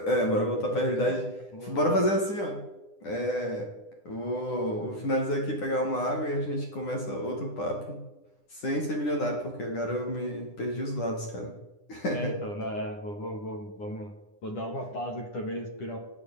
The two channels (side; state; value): right; late; 9.9 ms